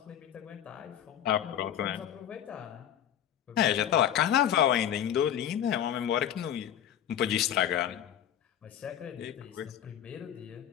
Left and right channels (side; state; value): right; quieter; 10.3 dB